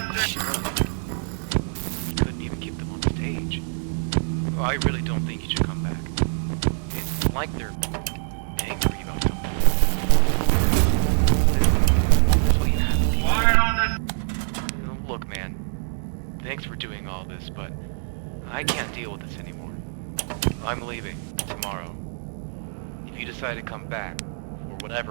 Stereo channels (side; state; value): left; silent; digital silence